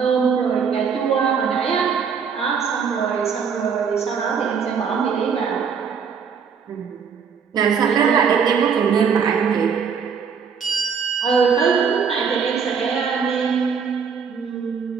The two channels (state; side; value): quieter; left; 6.4 dB